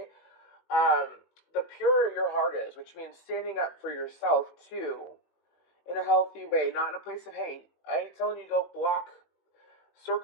the purer your heart is, which means standing up for yourself too, in a healthy way, not in a place of hate. I ain't telling you to go block.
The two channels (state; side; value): late; right; 19 ms